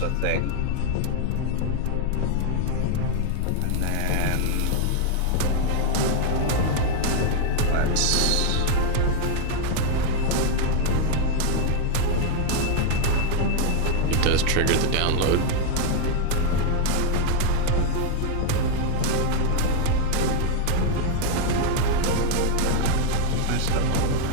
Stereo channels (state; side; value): different; both; correlation 0.01